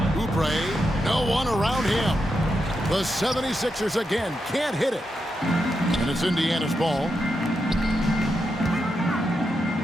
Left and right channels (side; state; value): both; normal; correlation 0.85